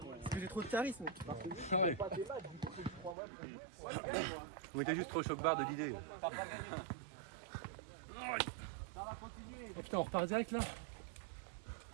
que j'ai trop de charisme. Ah ouais. Pas tes matchs, du coup, faut que tu crois moi. Moi, je gagne, moi. On était juste trop choc-barre de l'idée. T'as pas gagné. Ça va continuer. Oh putain, on repart direct là.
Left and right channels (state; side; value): drops out; left; at 3.2 s